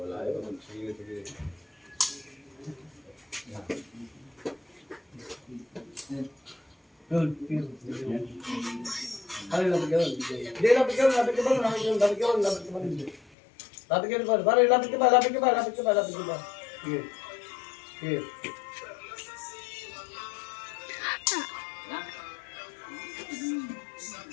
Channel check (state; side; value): drops out; right; at 13.3 s